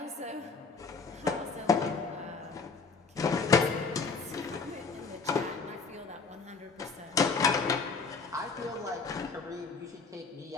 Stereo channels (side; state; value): right; quieter; 4.7 dB